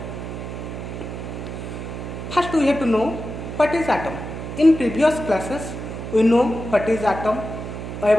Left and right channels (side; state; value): right; noise; hum, 7 dB below the sound